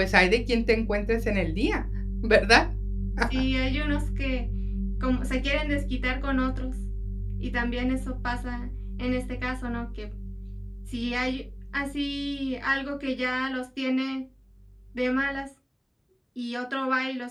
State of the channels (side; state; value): both; identical; correlation 1.00